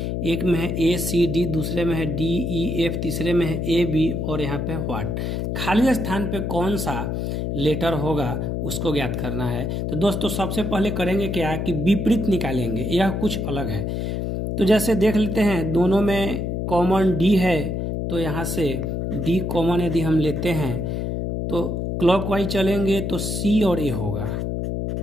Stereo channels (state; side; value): noise; left; hum, 2 dB below the sound